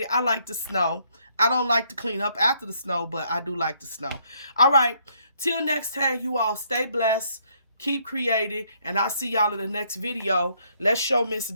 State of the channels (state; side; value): inverted; both; correlation -0.69